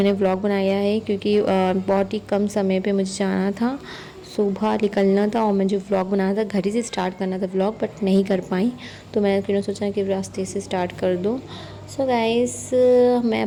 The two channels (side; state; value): both; identical; correlation 1.00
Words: व्लॉग बनाया है, क्योंकि बहुत ही कम समय पे मुझे जाना था, सुबह निकलना था और मुझे व्लॉग बनाना था, घर ही से स्टार्ट करना था व्लॉग, बट नहीं कर पाई। तो मैंने फिर सोचा कि रास्ते से स्टार्ट कर दूँ। सो गाइस मैं